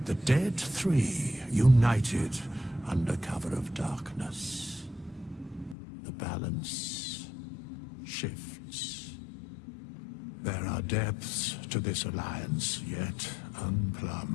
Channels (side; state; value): right; drops out; at 5.8 s